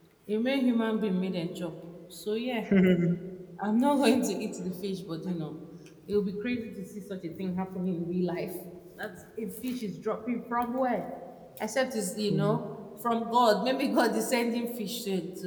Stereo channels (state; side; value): identical; both; correlation 1.00